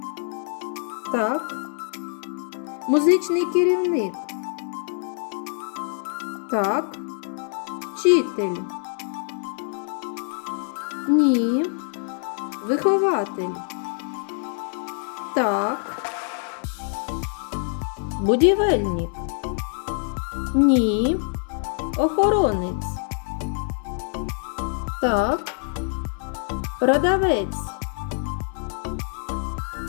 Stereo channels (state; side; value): silent; right; 61 dB below the other